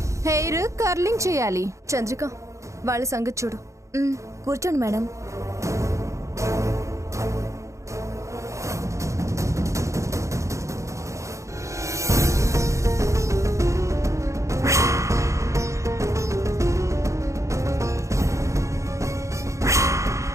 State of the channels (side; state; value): left; late; 0.15 ms